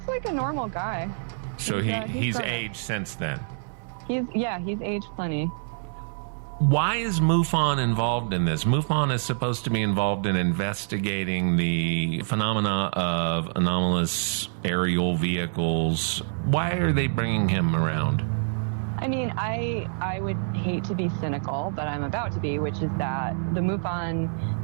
like a normal guy. So he's aged since then? He's aged plenty. Why is MUFON involved in this? MUFON is supposed to be involved in investigating the phenomena of anomalous aerial vehicles. Why are they bringing him around? I mean, I would hate to be cynical, but I'm about to be, which is that the MUFON Pentagon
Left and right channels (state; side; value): silent; left; 61 dB below the other